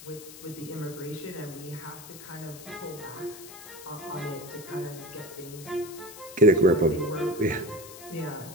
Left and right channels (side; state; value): left; noise; hiss, 15 dB below the sound